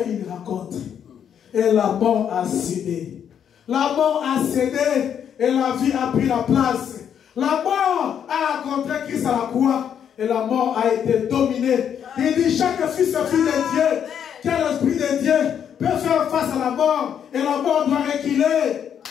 une rencontre. Et la mort a cédé. La mort a cédé et la vie a pris la place. La mort a rencontré Christ à la croix et la mort a été dominée. Il dit chaque fils et fille de Dieu, qui a l'esprit de Dieu, peut faire face à la mort et la mort doit reculer.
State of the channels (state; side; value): quieter; right; 8.6 dB